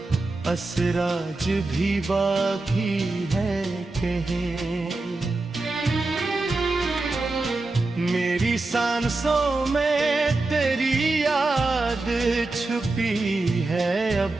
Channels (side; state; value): left; quieter; 3.2 dB